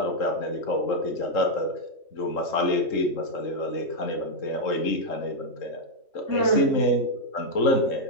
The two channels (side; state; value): right; late; 3.7 ms